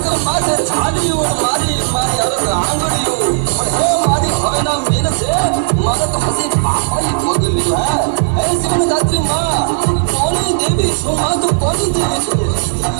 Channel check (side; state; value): left; silent; digital silence